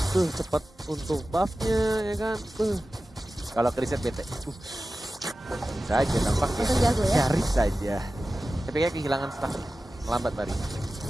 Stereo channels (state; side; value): normal; both; correlation 0.95